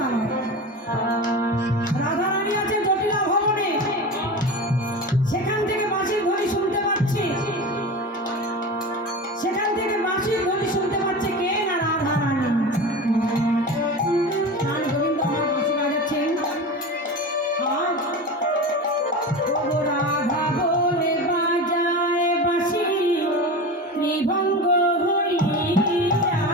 আমার রাধারানী আছে জটিলা ভবনে, সেখান থেকে বাঁশির ধ্বনি শুনতে পাচ্ছি, সেখান থেকে বাঁশির ধ্বনি শুনতে পাচ্ছে কে না রাধারানী। গান গোবিন্দ আমার বাঁশি বাজাচ্ছেন। ও রাধা বলে বাজায় বাঁশি ত্রিভঙ্গ হইয়া,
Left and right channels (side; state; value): both; normal; correlation 0.28